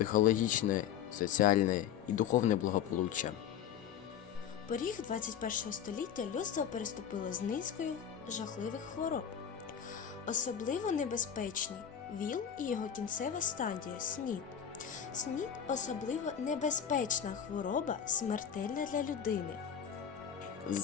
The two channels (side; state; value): right; quieter; 8.8 dB